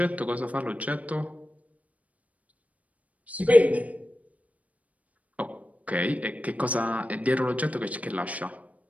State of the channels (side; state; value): left; late; 0.069 ms